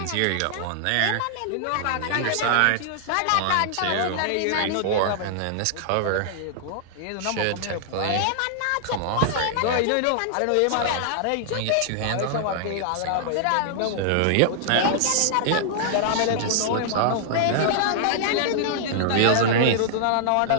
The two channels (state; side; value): different; both; correlation -0.01